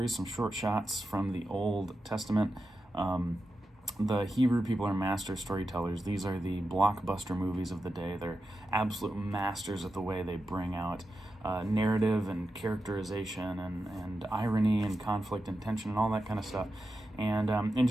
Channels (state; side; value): normal; both; correlation 0.90